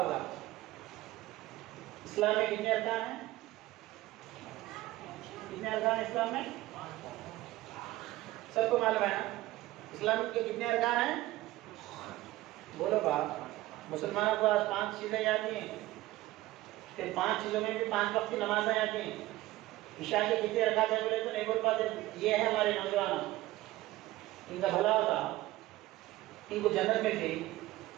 اسلام میں کتنے ارکان ہیں؟ کتنے ارکان ہیں اسلام میں؟ سب کو معلوم ہے نا اسلام کے کتنے ارکان ہیں؟ بولو باپ. مسلمانوں کو آج 5 چیزیں یاد ہیں، پھر 5 چیزوں میں بھی 5 وقت کی نمازیں یاد ہیں. عشاء کے کتنے رکعت ہیں بولے تو نہیں بول پاتے. یہ ہے ہمارے نوجوان، ان کا بھلا ہوتا، ان کو جنت ملتی،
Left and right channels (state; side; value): quieter; left; 17.2 dB